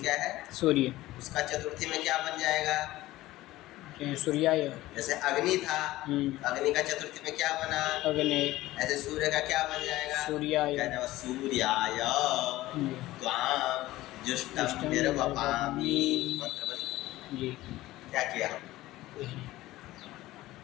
है? सूर्य। उसका चतुर्थी में क्या बन जाएगा? सूर्याय। जैसे अग्नि था, अग्नि का चतुर्थी में क्या बना? अग्नि। ऐसे सूर्य का क्या बन जाएगा? सूर्याय। सूर्याय त्वाम जुष्टम निर्वपामि। मंत्र बन जी। क्या किया?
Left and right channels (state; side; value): quieter; right; 16.9 dB